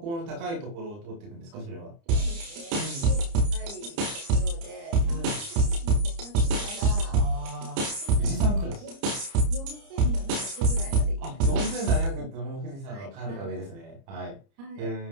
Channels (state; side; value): late; left; 30 ms